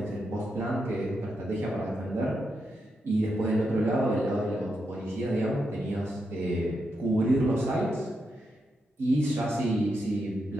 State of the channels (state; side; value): normal; both; correlation 0.84